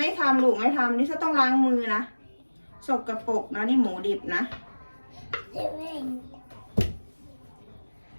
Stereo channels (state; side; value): inverted; both; correlation -1.00